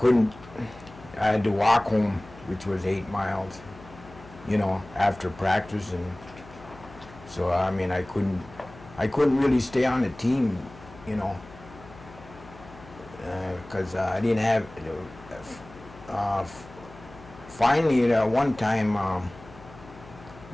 had to walk home, which was 8 miles, after practice, and so, I couldn't really stay on the team, because I didn't have, finally, one time,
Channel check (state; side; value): noise; left; hum, 20 dB below the sound